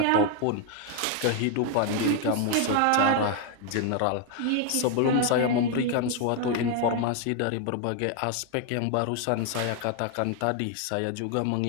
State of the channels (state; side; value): different; both; correlation 0.00